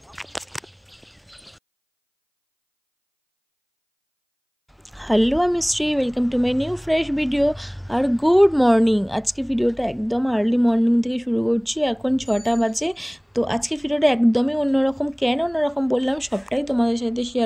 হ্যালো আমি Shri, welcome to my new fresh video আর গুড মর্নিং। আজকে ভিডিওটা একদম আর্লি মর্নিং থেকে শুরু করছি, এখন 6টা বাজে। তো আজকে ভিডিওটা একদমই অন্যরকম। কেন অন্যরকম বললাম সবটাই তোমাদের সাথে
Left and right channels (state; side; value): identical; both; correlation 1.00